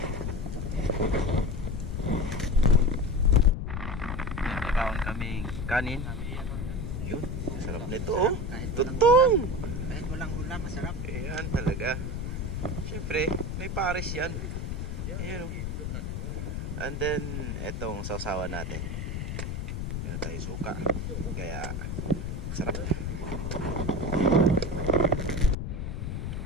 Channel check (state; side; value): noise; left; rumble, 4 dB below the sound